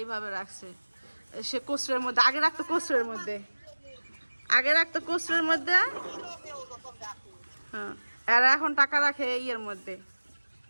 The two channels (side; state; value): both; inverted; correlation -1.00